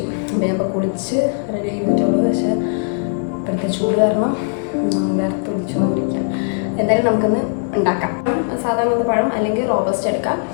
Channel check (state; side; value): silent; right; 67 dB below the other